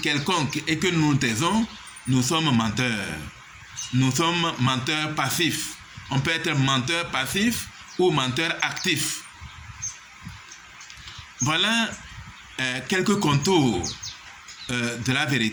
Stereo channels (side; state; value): both; identical; correlation 1.00